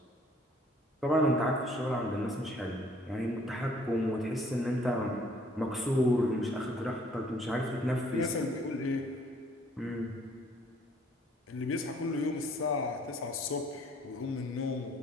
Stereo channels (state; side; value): normal; both; correlation 0.60